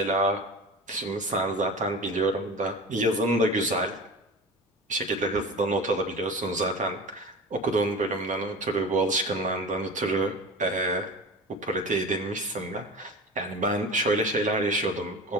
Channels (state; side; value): normal; both; correlation 0.33